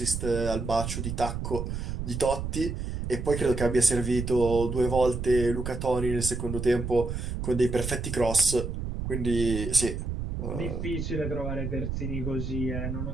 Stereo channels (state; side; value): noise; right; rumble, 4 dB below the sound